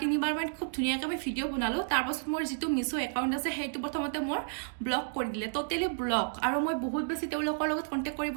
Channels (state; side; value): silent; left; digital silence